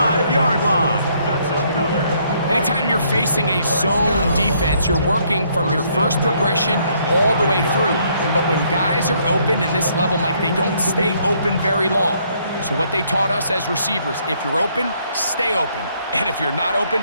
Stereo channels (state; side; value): inverted; both; correlation -0.68